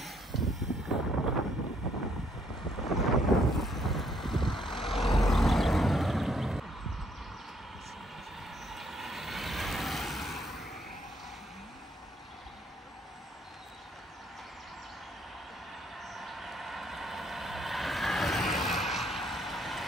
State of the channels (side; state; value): both; normal; correlation 0.68